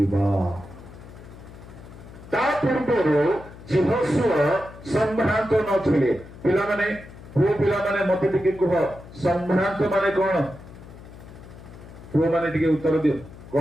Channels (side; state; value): left; noise; hum, 17 dB below the sound